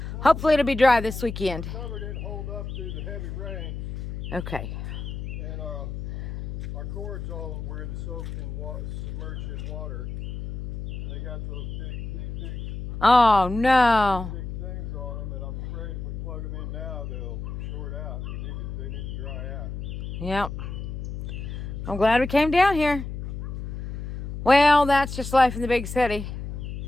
Hopefully it'll be dry this weekend. The cover didn't hold up through the heavy rain. Okay. And our cords all were soaked in water, submerged in water. And they got those big Oh no. things on them, and I'm afraid if we plug them in now, they'll short out. They need to dry out. Yep. I'm glad we came down here. Well, that's just life in the big city.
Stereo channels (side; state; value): left; noise; hum, 6 dB below the sound